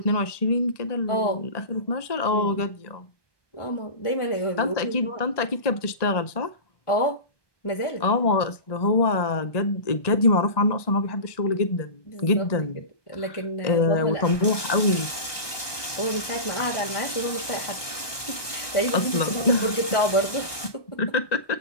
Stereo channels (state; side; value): late; right; 1.2 ms